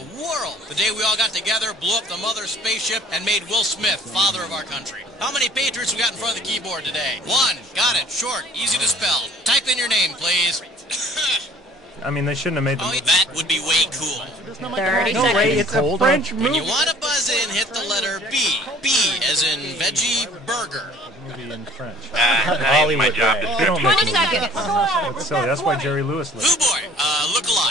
world. The day we all got together, blew up the mother spaceship, and made Will Smith father of our country. How many patriots we got in front of the keyboard today? One. Got it. Short. Easy to spell. Type in your name, please. I mean, they shouldn't have made the movie. That would be way cool. 30 No, seconds. Ray, it's a French When movie. you want to buzz in, hit the letter B. B as in veggie burger. Movie in French. Not even my job. They don't make 20 movies. seconds. That's silly. That's why Jerry Lewis Who lived. boy, look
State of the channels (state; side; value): normal; both; correlation 0.52